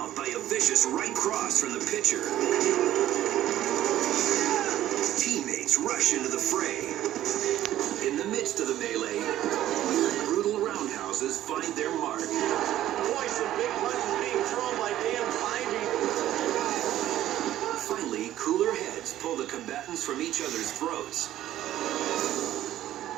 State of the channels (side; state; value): left; quieter; 13.1 dB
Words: by a vicious right cross from the pitcher. Teammates rush into the fray. In the midst of the melee, brutal roundhouses find their mark. Boy, some big punches being thrown by Dan Ivey. Finally, cooler heads pull the combatants from each other's throats.